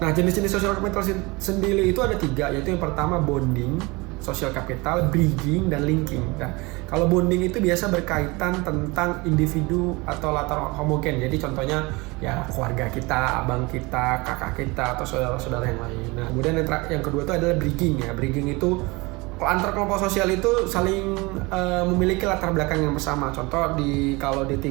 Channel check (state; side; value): quieter; left; 24.8 dB